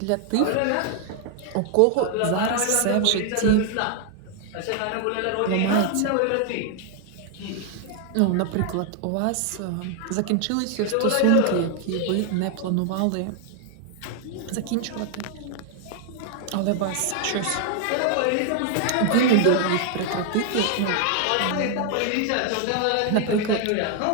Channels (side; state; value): both; different; correlation 0.00